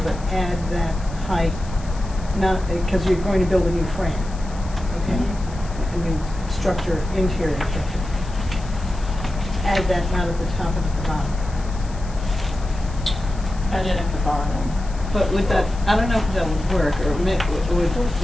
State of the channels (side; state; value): left; noise; hiss, 21 dB below the sound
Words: but add that height, not, because you're going to build a new frame, okay? A new structure, interior structure. Add that not at the top and at the bottom. Add it at the bottom. But would that, I don't know if that would work, or would,